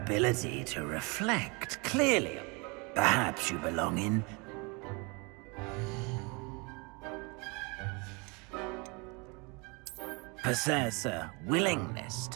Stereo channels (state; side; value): quieter; left; 29.6 dB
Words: to reflect clearly. Perhaps you belong in... possess a willingness